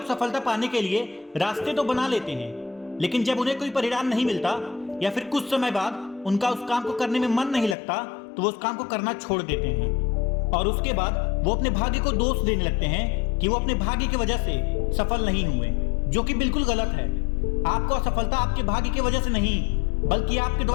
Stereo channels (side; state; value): right; drops out; at 7.8 s